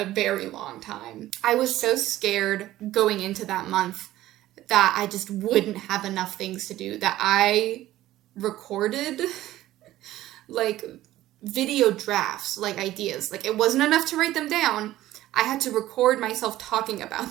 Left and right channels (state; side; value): quieter; left; 14.9 dB